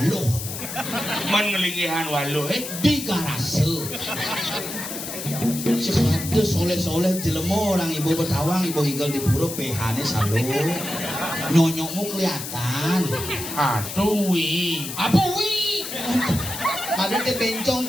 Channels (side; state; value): left; noise; hiss, 7 dB below the sound